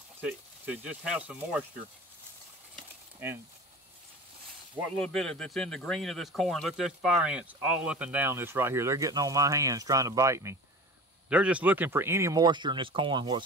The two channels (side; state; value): both; normal; correlation 0.37